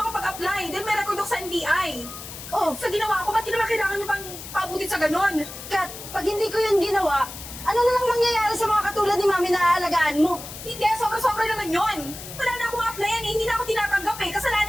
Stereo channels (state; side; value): noise; left; hiss, 12 dB below the sound